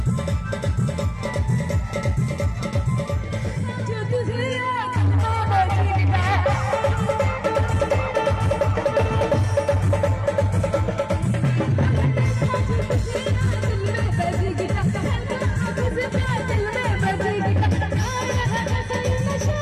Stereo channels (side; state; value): both; identical; correlation 1.00